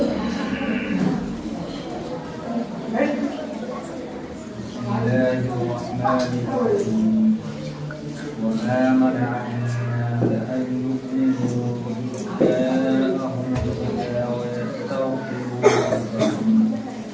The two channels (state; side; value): identical; both; correlation 1.00